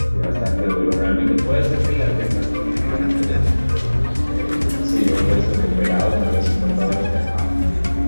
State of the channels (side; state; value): both; inverted; correlation -1.00